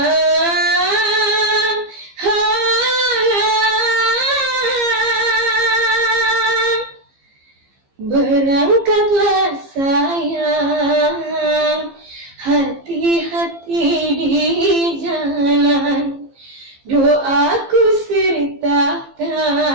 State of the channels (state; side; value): late; left; 15 ms